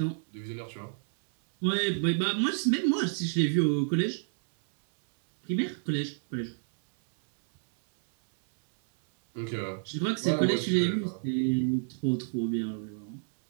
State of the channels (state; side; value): silent; left; 59 dB below the other